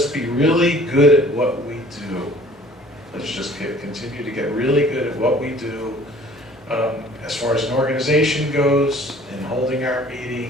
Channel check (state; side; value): normal; both; correlation 0.52